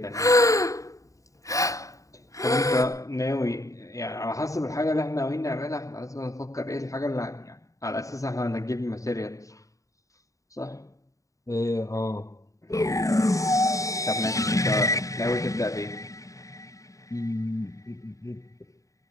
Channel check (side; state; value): right; late; 0.16 ms